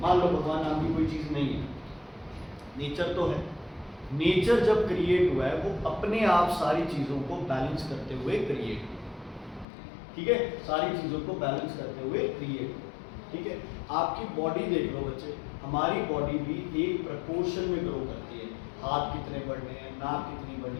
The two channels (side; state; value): right; drops out; at 9.7 s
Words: मान लो भगवान नाम की कोई चीज़ नहीं है, नेचर तो है, नेचर जब क्रिएट हुआ है वो अपने आप सारी चीज़ों को बैलेंस करते हुए क्रिएट हुआ, ठीक है, सारी चीज़ों को बैलेंस करते हुए क्रिएट हुआ, ठीक है। आपकी बॉडी देख लो बच्चे, हमारी बॉडी भी एक प्रपोर्शन में ग्रो करती है। हाथ कितने बढ़ने हैं, नाक कितनी